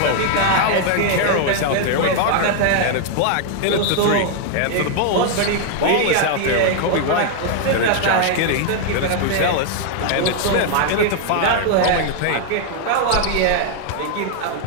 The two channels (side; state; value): both; different; correlation 0.00